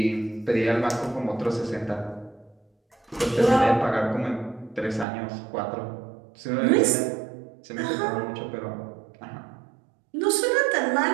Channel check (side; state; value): left; drops out; at 5.1 s